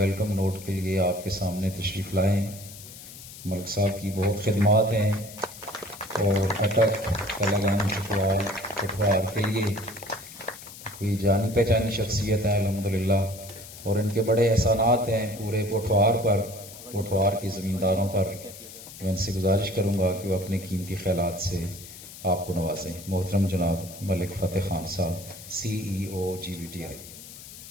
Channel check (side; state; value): left; noise; hiss, 15 dB below the sound